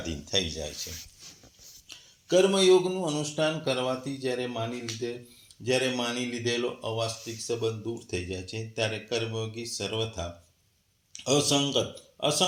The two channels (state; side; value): identical; both; correlation 1.00